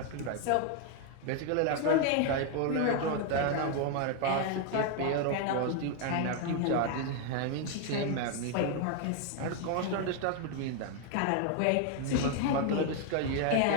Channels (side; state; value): both; different; correlation 0.01